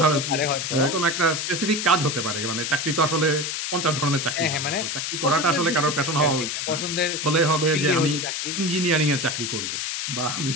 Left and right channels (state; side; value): noise; left; hiss, 3 dB below the sound